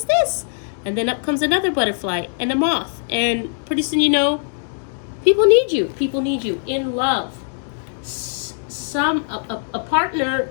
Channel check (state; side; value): silent; right; digital silence